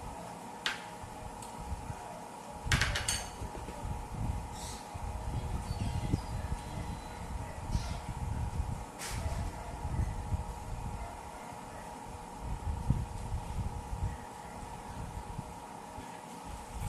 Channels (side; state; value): both; identical; correlation 1.00